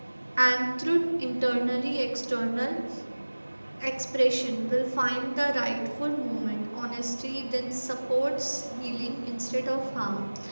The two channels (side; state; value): both; inverted; correlation -1.00